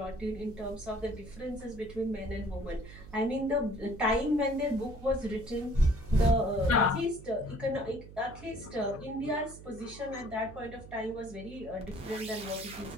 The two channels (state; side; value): noise; right; hum, 16 dB below the sound